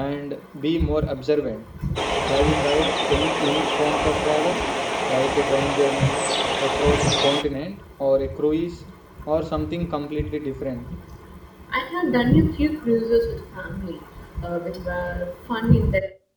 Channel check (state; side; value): identical; both; correlation 1.00